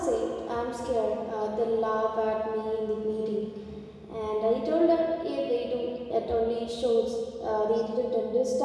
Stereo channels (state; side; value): identical; both; correlation 1.00